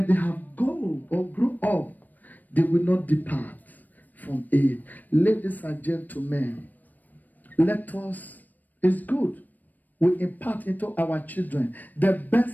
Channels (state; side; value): late; right; 0.085 ms